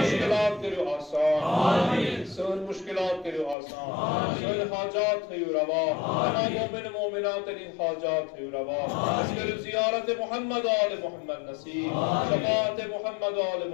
کرو آسان، سن مشکلات کرو آسان، سن حاجات ہے روا، تمام مومن مومنات ان حاجات ہے روا. اس کرو زیارت محمد آل محمد نصیب، شفاعت محمد آل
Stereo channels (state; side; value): drops out; right; at 3.6 s